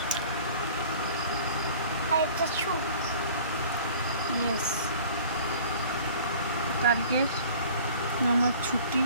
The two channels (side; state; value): both; inverted; correlation -0.47